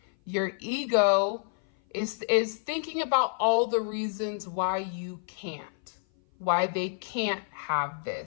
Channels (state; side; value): silent; right; 56 dB below the other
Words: your ego is thinking about all the reasons why you can't, why they can't have